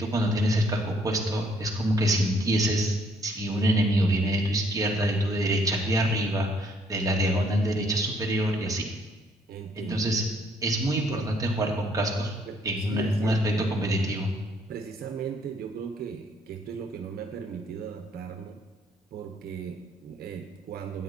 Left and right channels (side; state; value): both; normal; correlation 0.66